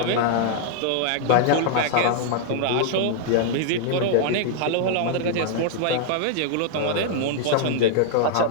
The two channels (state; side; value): different; both; correlation -0.01